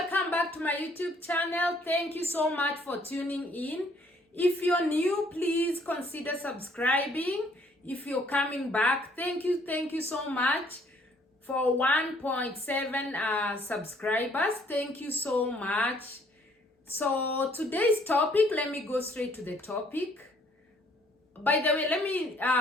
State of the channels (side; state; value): both; normal; correlation 0.63